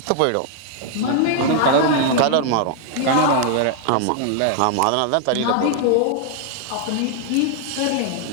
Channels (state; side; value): different; both; correlation 0.00